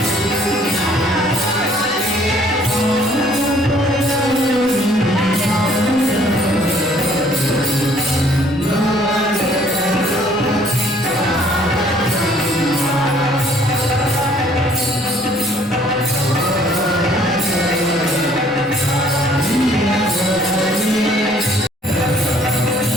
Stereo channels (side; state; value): both; normal; correlation 0.60